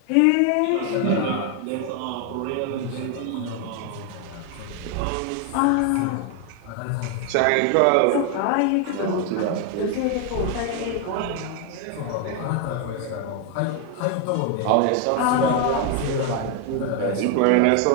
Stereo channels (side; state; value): both; different; correlation 0.01